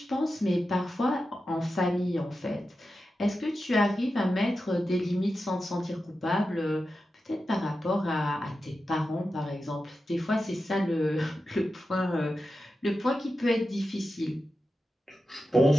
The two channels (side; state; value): both; normal; correlation 0.91